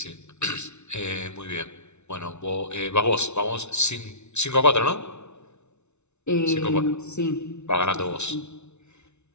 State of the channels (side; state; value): right; late; 0.82 ms